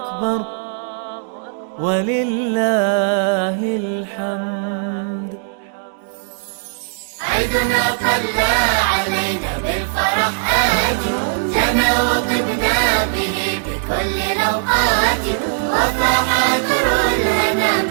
ولله الحمد. عيدنا طلع علينا بالفرح آتي، جنى وطبنا به بكل الأوقات، وفاح در الهنا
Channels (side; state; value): left; silent; digital silence